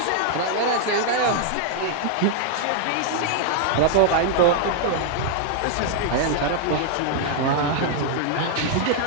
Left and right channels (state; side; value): different; both; correlation -0.01